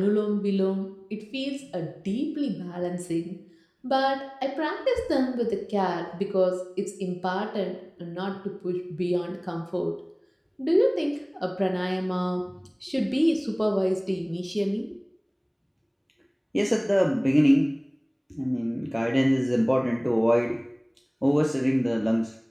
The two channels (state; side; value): identical; both; correlation 1.00